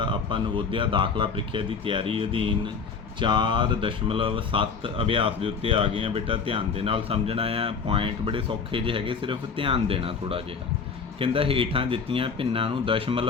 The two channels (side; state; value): right; quieter; 5.4 dB